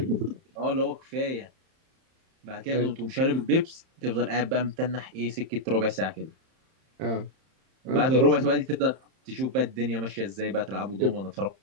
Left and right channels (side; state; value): left; late; 31 ms